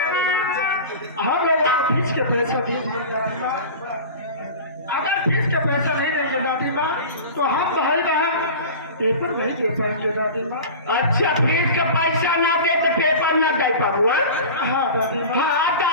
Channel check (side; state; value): both; inverted; correlation -0.34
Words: हम लोग फीस के पैसा दे दिए दादी माँ अगर फीस के पैसा नहीं देंगे दादी माँ तो हम भाई बहन पेपर नहीं दे पाएंगे दादी माँ अच्छा फीस का पैसा ना दे तो पेपर ना दे पाबू हाँ दादी माँ हाँ